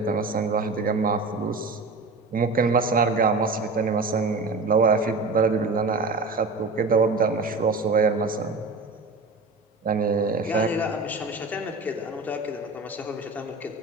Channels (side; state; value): left; quieter; 3.6 dB